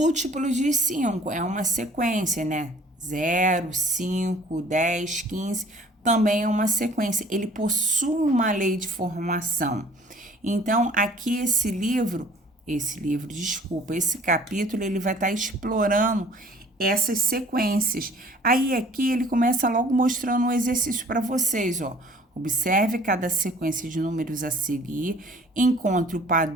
de 5 é uma sequência, né? 0, 5, 10, 15 também é uma sequência. Ele possui uma lei de formação. Então, aqui esse capítulo, ele vai estar explorando essas sequências. Aí aqui ele começa logo mostrando um exercício para vocês, ó. Observe cada sequência de números a seguir, encontre o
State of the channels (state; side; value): normal; both; correlation 0.52